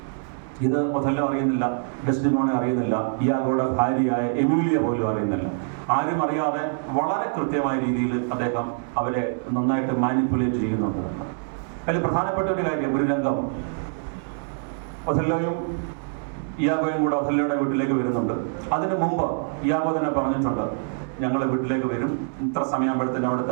ഇത് ഒഥല്ലോ അറിയുന്നില്ല, ഡെസ്ഡിമോണ അറിയുന്നില്ല, ഇയാഗോയുടെ ഭാര്യയായ എമിലിയ പോലും അറിയുന്നില്ല. ആരും അറിയാതെ വളരെ കൃത്യമായ രീതിയിൽ അദ്ദേഹം അവരെ നന്നായിട്ട് മാനിപ്പുലേറ്റ് ചെയ്യുന്നുണ്ട്. അതിൽ പ്രധാനപ്പെട്ട ഒരു കാര്യം, ഒരു രംഗം, ഒഥല്ലോയും ഇയാഗോയും കൂടെ ഒഥല്ലോയുടെ വീട്ടിലേക്ക് വരുന്നുണ്ട്. അതിന് മുമ്പ് ഇയാഗോ തന്നെ പറഞ്ഞിട്ടുണ്ട്, ഞങ്ങൾ വീട്ടിലേക്ക് വരും, ഇത്ര സമയമാകുമ്പോഴത്തേന്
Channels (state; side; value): silent; left; digital silence